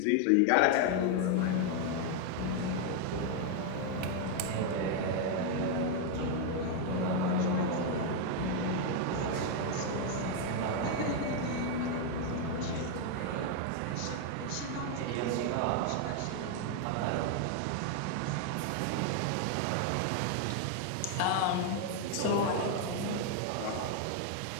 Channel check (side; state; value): both; different; correlation 0.00